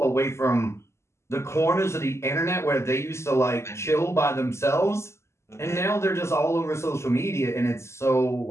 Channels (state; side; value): late; right; 0.13 ms